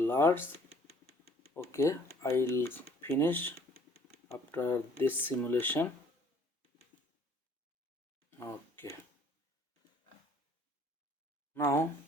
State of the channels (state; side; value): normal; both; correlation 0.58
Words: Okay, I'll finish after this simulation. Okay, now